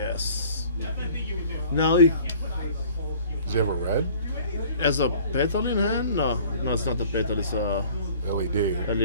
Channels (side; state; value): both; inverted; correlation -0.51